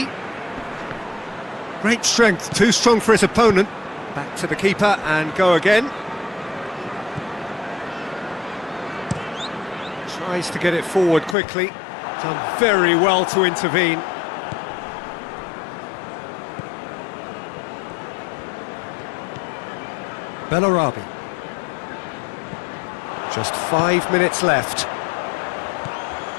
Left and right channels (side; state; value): right; drops out; at 11.4 s